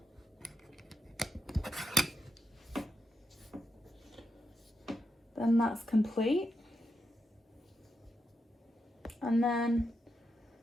Then that's complete. And then,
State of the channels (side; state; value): both; normal; correlation 0.86